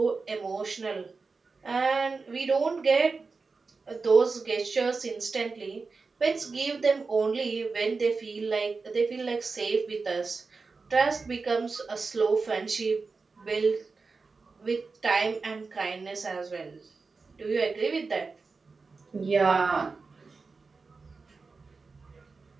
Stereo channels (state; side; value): quieter; left; 4.3 dB